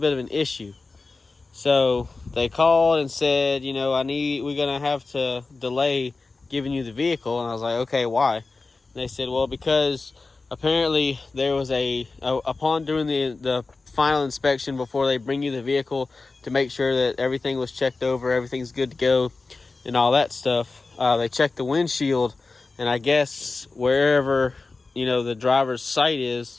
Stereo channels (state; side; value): quieter; right; 3.8 dB